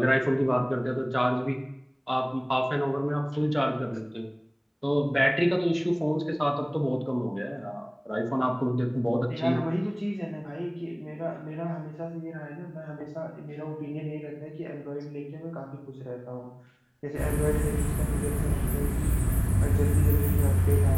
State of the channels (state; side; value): identical; both; correlation 1.00